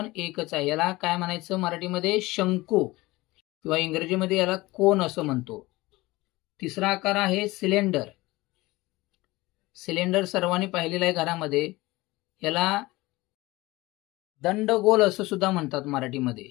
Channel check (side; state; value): right; quieter; 20.4 dB